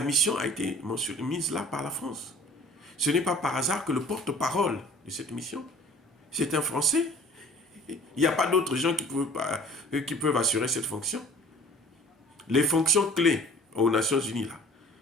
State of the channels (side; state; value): both; normal; correlation 0.49